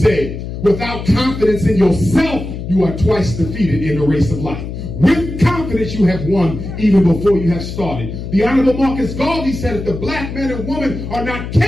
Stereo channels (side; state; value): left; noise; hum, 8 dB below the sound